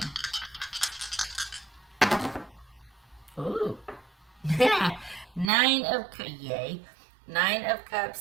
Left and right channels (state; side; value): drops out; left; at 5.5 s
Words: Ooh. Nine of